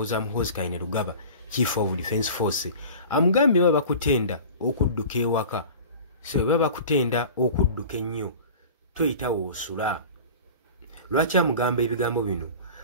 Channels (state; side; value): inverted; both; correlation -0.38